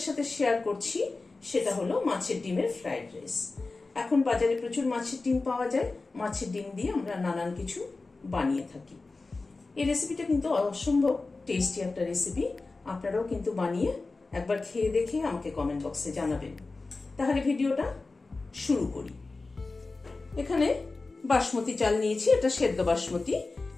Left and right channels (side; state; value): right; quieter; 3.6 dB